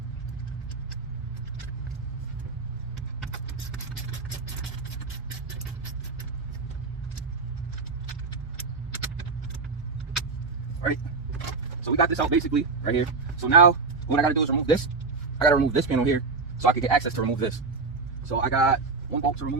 right? So we got this out basically right here. So now what I gotta do is remove this. I gotta remove this panel here so I can get access to remove this. So I got one bolt to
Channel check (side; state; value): left; quieter; 4.3 dB